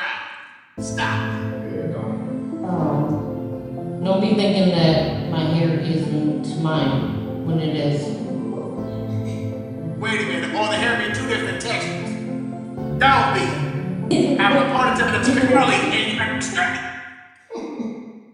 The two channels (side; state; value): both; identical; correlation 1.00